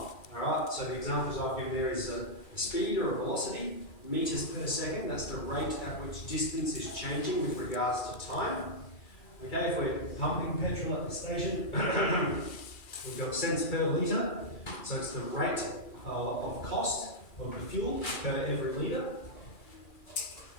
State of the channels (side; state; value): right; late; 2.4 ms